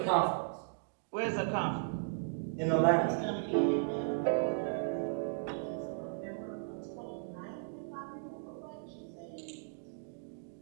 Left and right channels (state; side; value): silent; left; digital silence